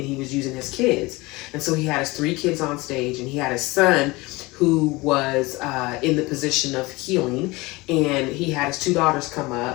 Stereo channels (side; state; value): right; quieter; 22.6 dB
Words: he was using his kids. And so he had his 3 kids on stage, and he had his son who was in the position of healing, and he had his 2 daughters come